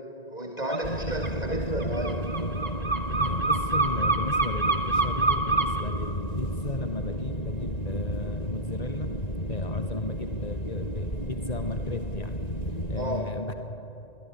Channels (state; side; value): late; right; 1.9 ms